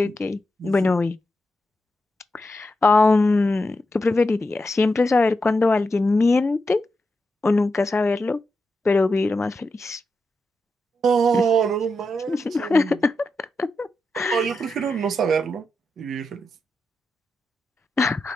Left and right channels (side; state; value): both; normal; correlation 0.87